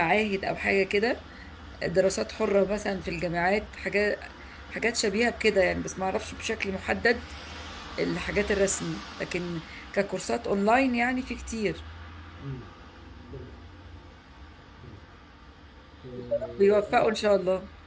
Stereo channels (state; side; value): identical; both; correlation 1.00